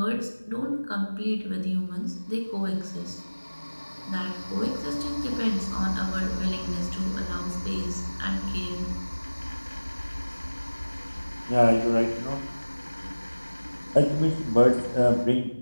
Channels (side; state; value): both; inverted; correlation -1.00